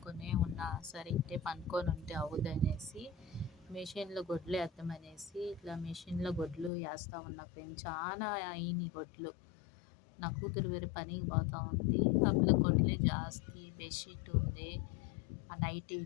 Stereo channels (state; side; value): drops out; right; at 6.7 s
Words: ఉన్నా. సరే ఇంటే పనుకొని ఉంటే అవ్వదనేసి మిషన్లో గొడ్లు వేద్దామనేసి ఇట్లా మిషన్లో గొడ్లు వేస్తూ ఉన్నా ఫ్రెండ్స్. చాలా అయినాయి గొడ్లు. నా కూతురు వేరే పనికి పోతూ ఉంది. అప్పుడు గొడ్లే జాస్తి బెడ్షీట్ ఉంది, ఆ